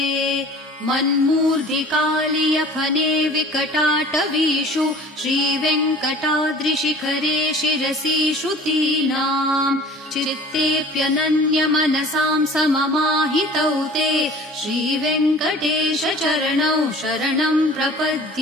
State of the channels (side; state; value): both; normal; correlation 0.45